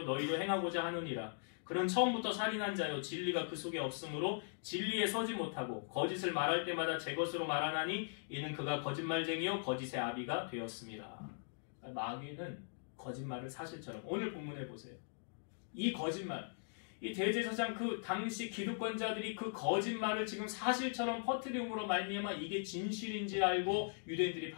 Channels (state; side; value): silent; right; digital silence